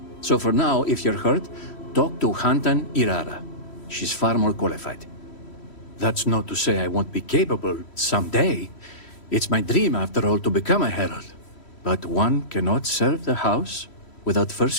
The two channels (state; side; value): late; right; 3.1 ms